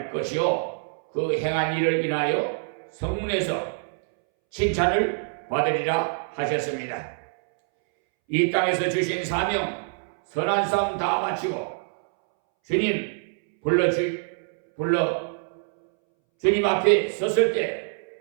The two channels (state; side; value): silent; left; 62 dB below the other